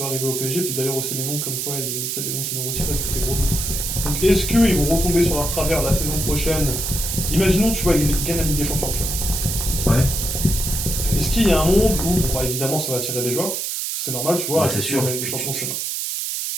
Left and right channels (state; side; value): noise; right; hiss, 2 dB below the sound